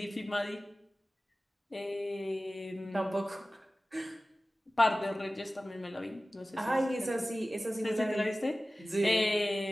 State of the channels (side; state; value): both; normal; correlation 0.97